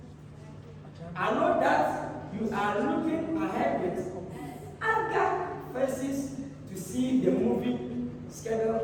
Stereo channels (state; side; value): identical; both; correlation 1.00